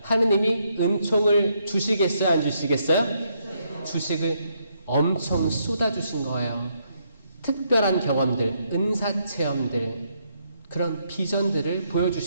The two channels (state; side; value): inverted; both; correlation -0.75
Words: 하느님이 은총을 주시겠어요? 안 주시겠어요? 주식을 엄청 쏟아주신 거예요. 특별한 경험들, 은사체험들, 그런 비전들을